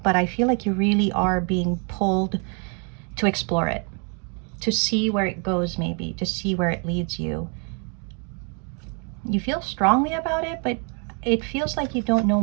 but I feel like you really are being pulled to explore it, to see where it goes, maybe, to see where it leads you. You feel strongly about it, but it feels like you don't know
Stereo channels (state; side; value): quieter; left; 38.4 dB